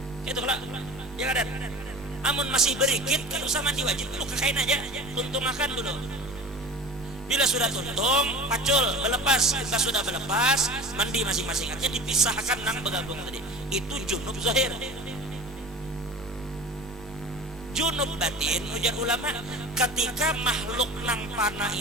Itu lah, ya kada. Amun masih berikit, kan usah mandi wajib dulu, kekain aja, tuntung makan dulu. Bila sudah tuntung, pacul, berlepas. Kita sudah berlepas, mandi masing-masing aja, dipisahkan nang bergabung tadi. Itu junub zahir. Junub batin, ujar ulama, ketika makhluk nang panah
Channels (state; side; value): normal; both; correlation 0.37